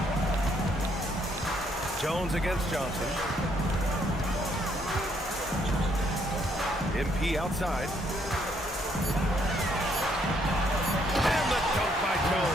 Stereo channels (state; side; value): normal; both; correlation 0.70